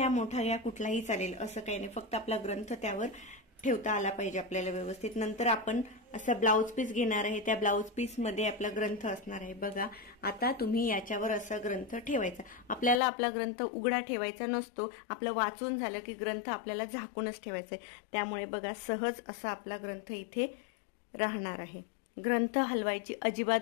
मोठा घ्या कुठलाही चालेल, असं काही नाही, फक्त आपला ग्रंथ त्यावर ठेवता आला पाहिजे आपल्याला व्यवस्थित। नंतर आपण असं ब्लाउज पीस घेणार आहे, त्या ब्लाउज पीस मध्ये आपला ग्रंथ असणार आहे। बघा, आता तुम्ही याच्यावर असा ग्रंथ ठेवायचा, आपल्याला आपला ग्रंथ उघडा ठेवायचा नसतो, आपलं वाचून झालं की ग्रंथ आपल्याला झाकूनच ठेवायचा आहे, त्यामुळे बघा सहज असा आपला ग्रंथ इथे राहणार आहे। ग्रंथ हलवायची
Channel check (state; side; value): drops out; right; at 13.0 s